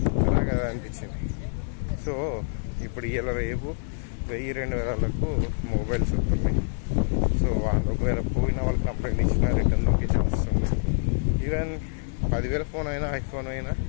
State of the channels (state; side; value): silent; right; digital silence